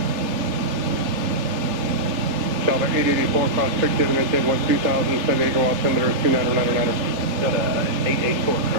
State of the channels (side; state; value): left; late; 3.3 ms